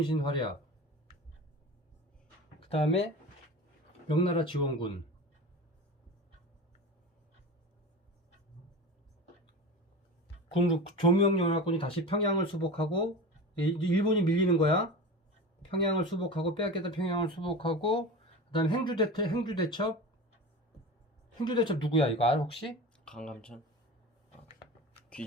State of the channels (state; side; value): normal; both; correlation 0.30